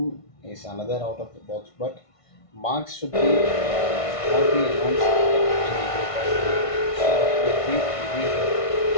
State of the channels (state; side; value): late; right; 1.5 ms